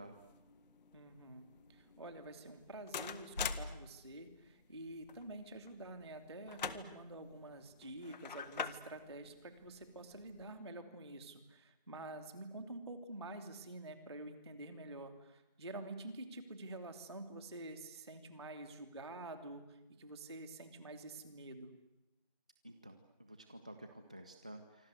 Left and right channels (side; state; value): both; inverted; correlation -0.32